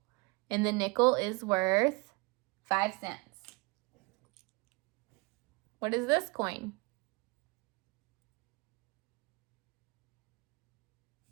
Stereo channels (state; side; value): quieter; left; 27.4 dB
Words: and the nickel is worth 5 cents. What is this coin?